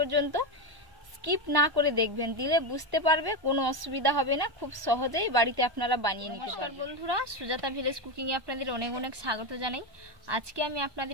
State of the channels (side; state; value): left; late; 1.0 ms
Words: স্কিপ না করে দেখবেন, দিলে বুঝতে পারবে, কোনো অসুবিধা হবে না, খুব সহজেই বাড়িতে আপনারা বানিয়ে নিতে পারবেন। নমস্কার বন্ধুরা, সুজাতা ভিলেজ কুকিংয়ে আপনাদের অনেক অনেক স্বাগত জানাই। আজকে আমি